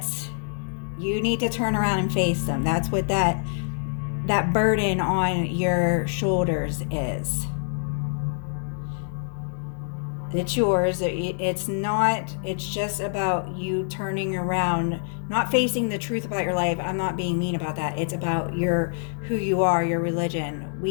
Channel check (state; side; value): silent; right; digital silence